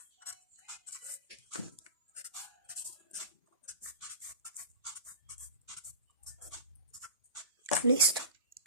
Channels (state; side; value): inverted; both; correlation -0.33